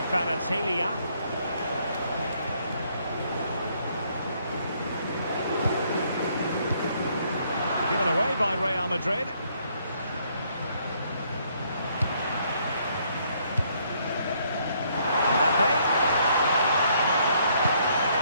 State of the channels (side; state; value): both; inverted; correlation -0.68